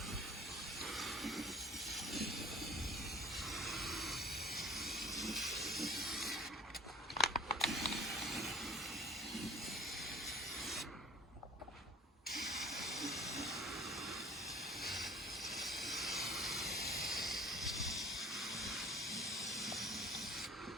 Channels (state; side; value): normal; both; correlation 0.48